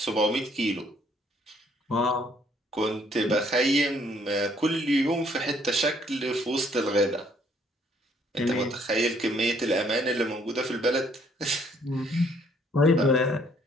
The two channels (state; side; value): normal; both; correlation 0.65